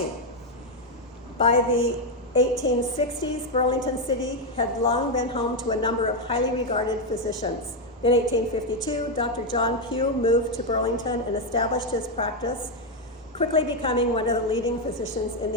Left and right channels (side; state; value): both; normal; correlation 0.04